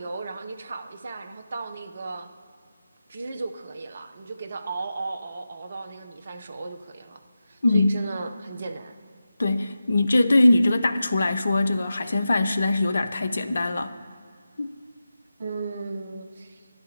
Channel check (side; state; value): both; inverted; correlation -0.93